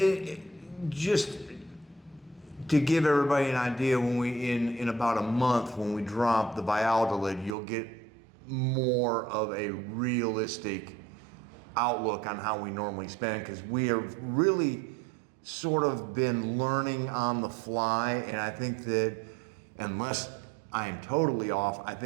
just to give everybody an idea, when we in about a month, when we drop the Valladolid, you'll get more of a realistic outlook on how we normally spend, because we have really sort of been learning on the fly, and I think that unless I am totally off, I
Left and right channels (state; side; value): drops out; left; at 7.6 s